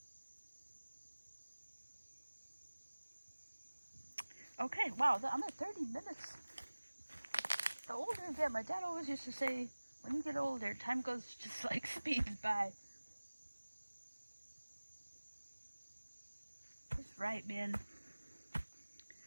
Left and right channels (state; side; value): inverted; both; correlation -1.00